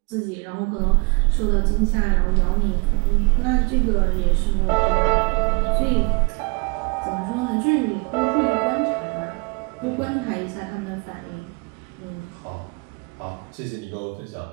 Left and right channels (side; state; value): left; quieter; 31.2 dB